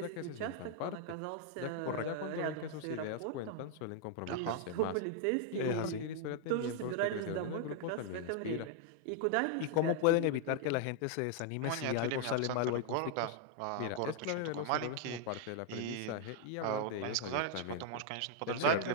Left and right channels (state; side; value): different; both; correlation 0.00